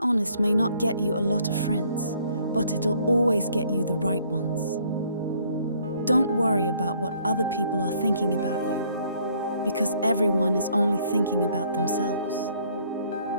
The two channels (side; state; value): both; inverted; correlation -0.63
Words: honest may not get you a lot of friends, but it'll always get you the right ones. Don't worry about what other people are thinking about you, because everyone is only thinking about themselves.